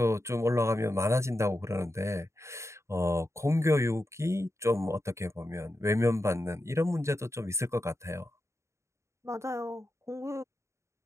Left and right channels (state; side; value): late; left; 0.14 ms